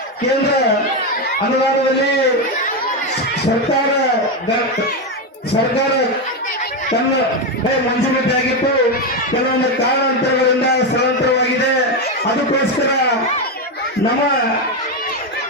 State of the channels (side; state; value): both; normal; correlation 0.09